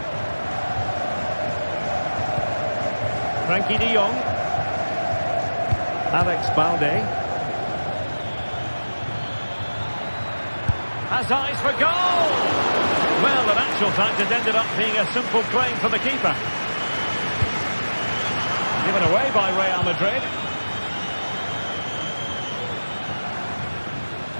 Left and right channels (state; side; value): inverted; both; correlation -1.00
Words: Frankie de Jong. Alex Balde. Has eyes for goal! Well, in actual fact, it ended up being a simple claim for the keeper. Given away by Real Madrid.